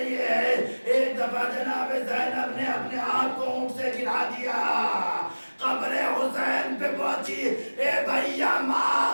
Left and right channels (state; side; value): inverted; both; correlation -1.00